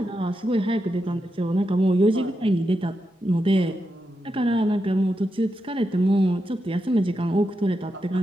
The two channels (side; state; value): both; normal; correlation 0.86